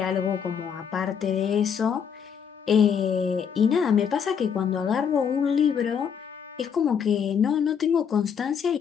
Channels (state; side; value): quieter; right; 7.3 dB